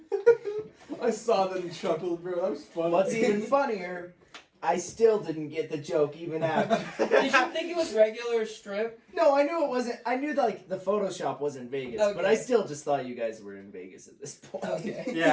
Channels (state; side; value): identical; both; correlation 1.00